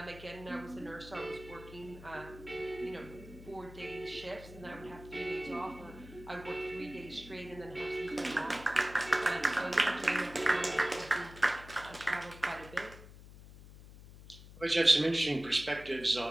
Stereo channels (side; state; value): left; noise; hum, 17 dB below the sound